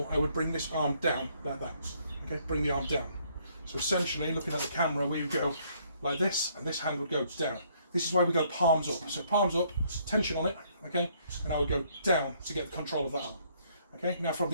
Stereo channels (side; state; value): both; inverted; correlation -0.67